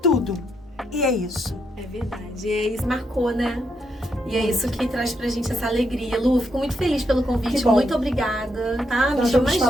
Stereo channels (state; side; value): normal; both; correlation 0.79